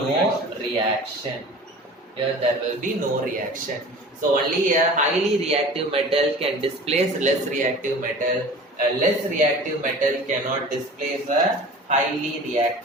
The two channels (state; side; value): normal; both; correlation 0.40